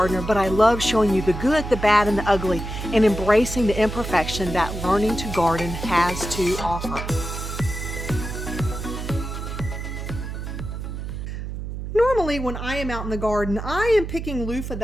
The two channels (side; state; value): right; noise; hum, 6 dB below the sound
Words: but I love showing you the good, the bad, and the ugly, and embracing the imperfection that learning to garden has to offer. Normally when I am out in the garden, I am picking loofah